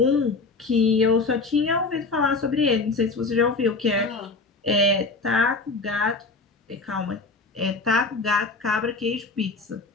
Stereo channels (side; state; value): right; quieter; 3.8 dB